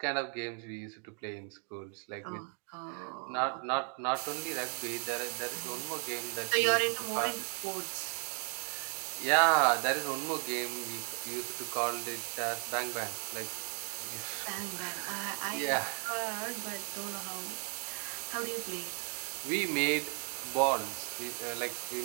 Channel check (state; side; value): quieter; left; 38.0 dB